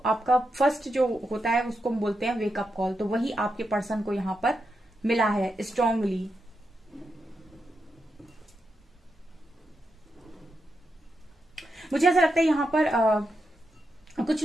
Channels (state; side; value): normal; both; correlation 0.85